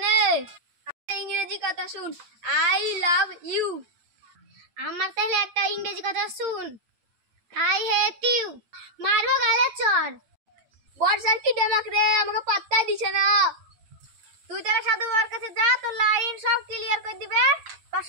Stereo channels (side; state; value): left; late; 8.7 ms